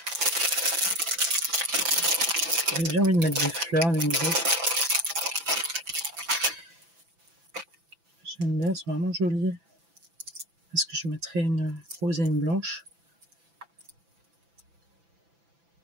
J'ai bien envie de mettre des fleurs, des nouveaux. J'aime bien, elles sont vraiment jolies. Est-ce que je mettrai une rose et une blanche?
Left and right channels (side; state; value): left; late; 6.0 ms